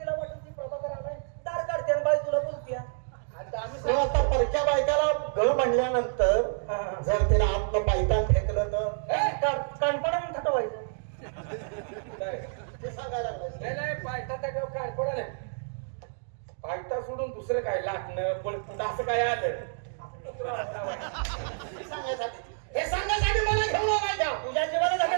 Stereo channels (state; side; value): silent; left; digital silence